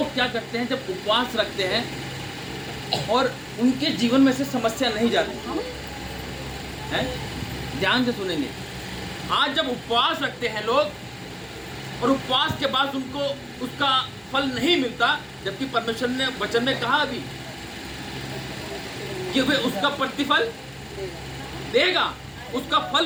क्या करते हैं, जब उपवास रखते हैं और उनके जीवन में से समस्या नहीं जाती है, ध्यान से सुनेंगे। आज जब उपवास रखते हैं लोग और उपवास के बाद उनको उसका फल नहीं मिलता, जबकि परमेश्वर ने वचन में कहा अभी कि वे उसका प्रतिफल देगा, उसका फल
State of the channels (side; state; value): both; identical; correlation 1.00